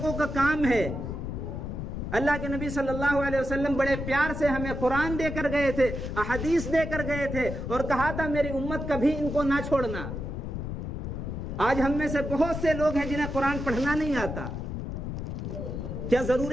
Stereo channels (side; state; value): left; noise; rumble, 5 dB below the sound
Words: کا کام ہے۔ اللہ کے نبی صلی اللہ علیہ وسلم بڑے پیار سے ہمیں قرآن دے کر گئے تھے، احادیث دے کر گئے تھے، اور کہا تھا میری امت کبھی ان کو نہ چھوڑنا۔ آج ہم میں سے بہت سے لوگ ہیں جنہیں قرآن پڑھنا نہیں آتا۔ کیا